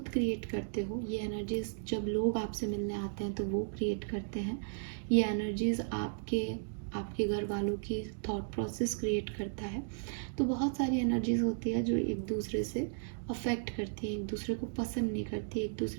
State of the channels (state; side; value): silent; left; digital silence